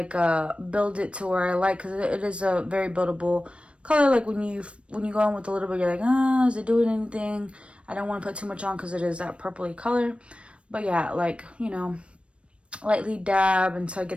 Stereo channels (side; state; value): left; late; 0.060 ms